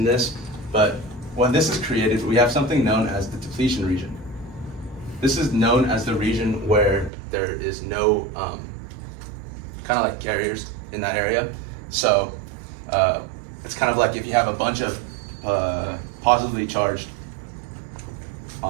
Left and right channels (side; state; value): left; drops out; at 7.1 s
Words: this, but when this is created, we have something known as the depletion region. This is known as the region where there is no kind of like carriers in that area. So it's kind of like if you have a bunch of positively charged